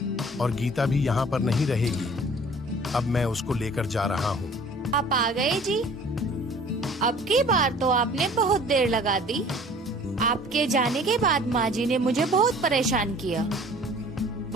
और गीता भी यहाँ पर नहीं रहेगी। अब मैं उसको लेकर जा रहा हूँ। आप आ गए जी। अब की बार तो आपने बहुत देर लगा दी। आपके जाने के बाद माँ जी ने मुझे बहुत परेशान किया।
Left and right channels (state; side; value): normal; both; correlation 0.49